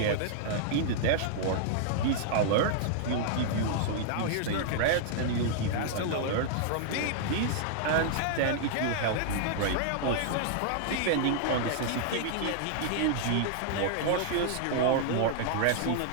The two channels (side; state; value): both; different; correlation -0.01